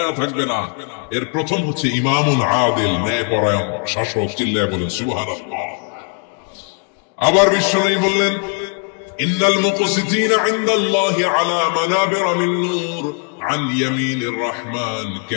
থাকবে না। এর প্রথম হচ্ছে ইমামুল আদিল, ন্যায়পরায়ণ শাসক। চিল্লায় বলেন সুবহানাল্লাহ। আবার বিশ্বনবী বললেন, ইন্নাল মুকসিতিনা ইনদাল্লাহি আলা মানাবিরা মিন নূর আন ইয়ামিনির রহমান।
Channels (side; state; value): right; quieter; 36.9 dB